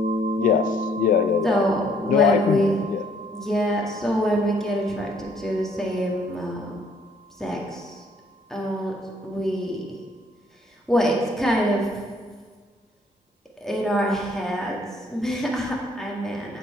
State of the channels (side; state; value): both; normal; correlation 0.63